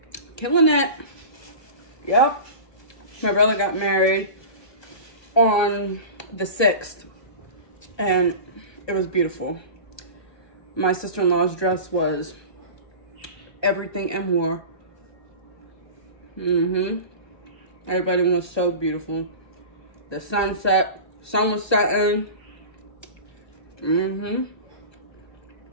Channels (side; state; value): right; late; 1.2 ms